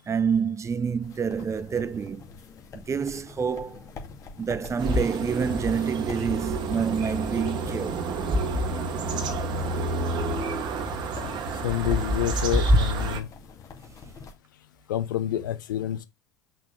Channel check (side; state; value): both; normal; correlation 0.50